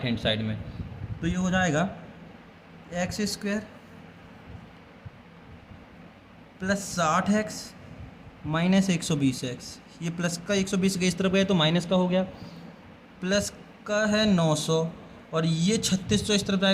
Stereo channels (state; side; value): identical; both; correlation 1.00